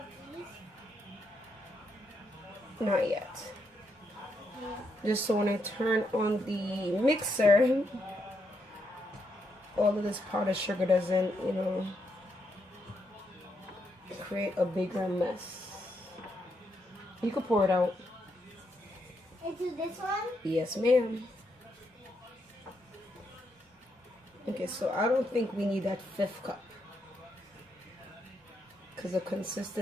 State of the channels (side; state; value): both; normal; correlation 0.79